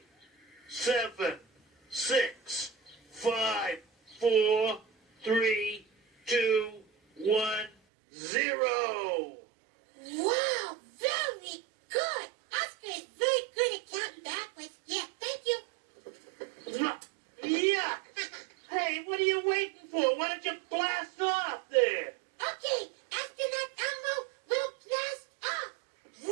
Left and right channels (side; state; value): left; drops out; at 7.7 s